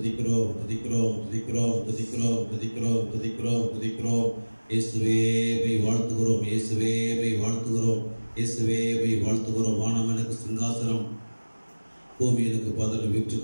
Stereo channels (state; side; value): inverted; both; correlation -1.00